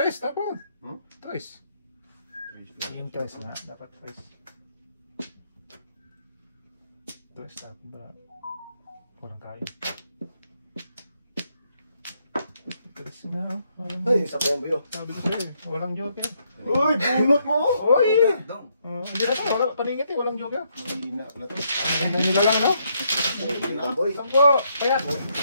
tapon. Trace. Yung trace nga, dapat trace. Trace, tapon ba? Walang kayo. Trace nga, oh. Ay, sabihan mo yun. Sabi ko sa'yo eh, walang joke eh. Uy! Bunot mo! Uy! Dong! Hindi na to, wala, paningit eh, walang joke eh. Hina pala to. May nila lang, no? Boy. Sampo, kaya.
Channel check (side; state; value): both; inverted; correlation -0.75